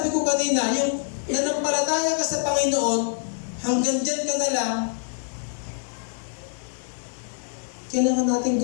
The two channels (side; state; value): right; silent; digital silence